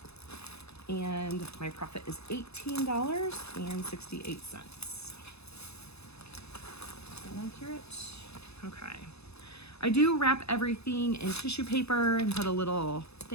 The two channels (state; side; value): late; right; 0.79 ms